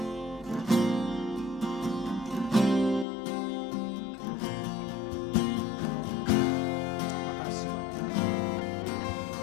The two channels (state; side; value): drops out; right; at 3.1 s